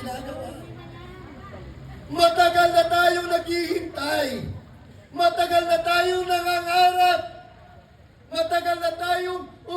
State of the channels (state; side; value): identical; both; correlation 1.00